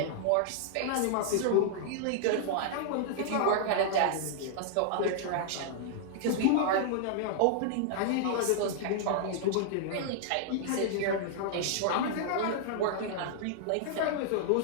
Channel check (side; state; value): both; different; correlation -0.01